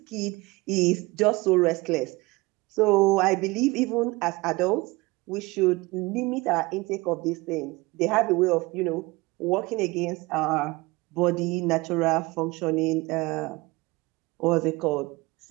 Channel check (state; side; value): quieter; left; 22.9 dB